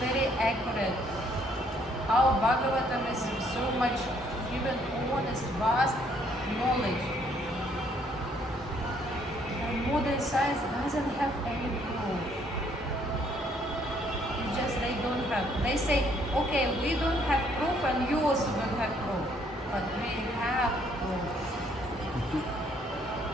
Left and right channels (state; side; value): normal; both; correlation 0.66